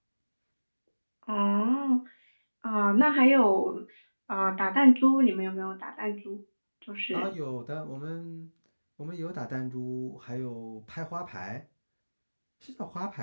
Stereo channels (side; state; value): both; inverted; correlation -1.00